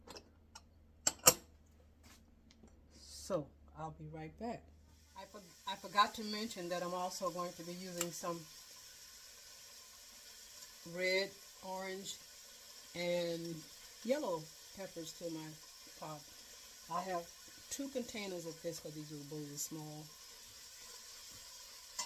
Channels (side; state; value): both; identical; correlation 1.00